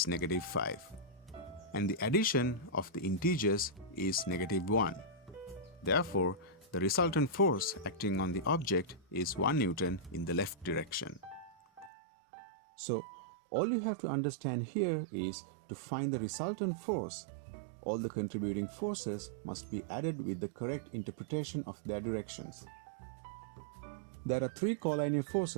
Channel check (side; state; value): left; drops out; at 11.9 s